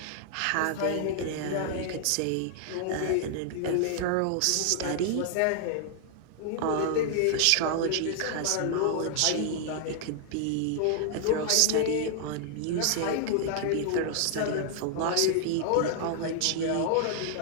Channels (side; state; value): both; different; correlation -0.01